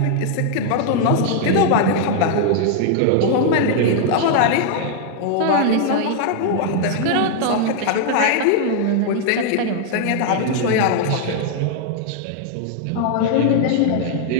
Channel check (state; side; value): different; both; correlation 0.00